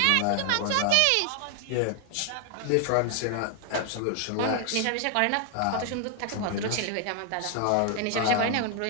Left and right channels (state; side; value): different; both; correlation 0.00